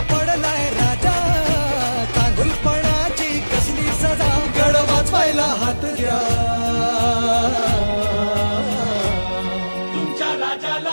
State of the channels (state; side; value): inverted; both; correlation -1.00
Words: पडलाय राजा, चांगुलपणाची कसली सजा. गड वाचवायला हात द्या, तुमच्या